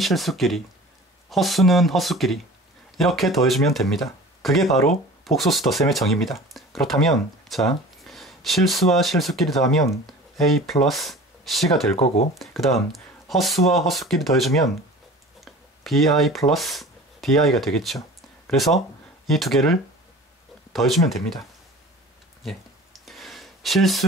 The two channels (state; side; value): normal; both; correlation 0.40